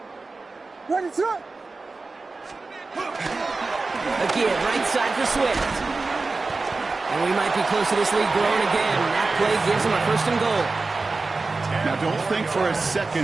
Again, right side for Swift. And we might be close to this lead growing again. That play gives them a 1st and goal. Now, don't think for a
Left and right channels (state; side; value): quieter; left; 3.7 dB